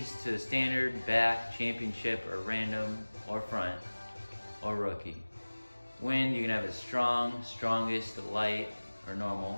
to standard, back, championship, or random, or front, or rookie. Wind, you can have it strong, strongest, light, or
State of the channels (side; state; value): both; inverted; correlation -1.00